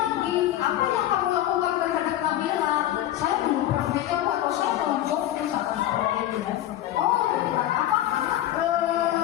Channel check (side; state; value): right; quieter; 13.2 dB